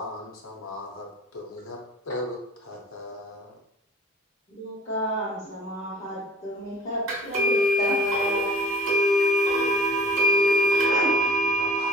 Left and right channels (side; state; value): both; normal; correlation 0.45